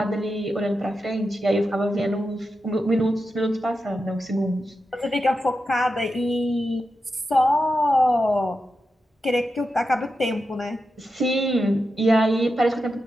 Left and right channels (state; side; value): normal; both; correlation 0.89